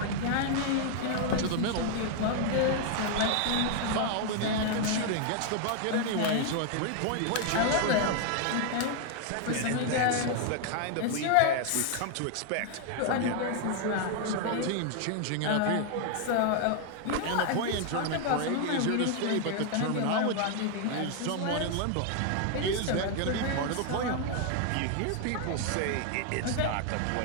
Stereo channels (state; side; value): different; both; correlation 0.00